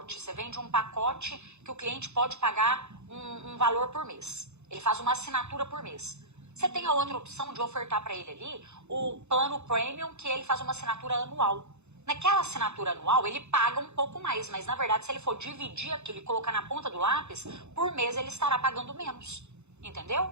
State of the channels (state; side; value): late; left; 0.82 ms